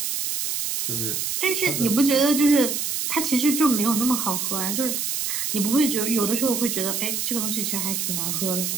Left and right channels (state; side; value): noise; right; hiss, 1 dB below the sound